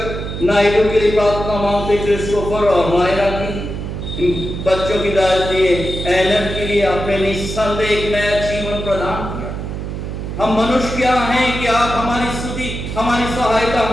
नायडू के लिए प्रार्थना मांगते, क्रिस्टोफर और मायरा की, बच्चों की दादी एनर के लिए आपने निस्संदेह एक नया जीवन प्रदान किया। हम मनुष्य क्या हैं कि आप हमारी स्तुति, हमारी सहायता,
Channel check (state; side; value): noise; right; hum, 6 dB below the sound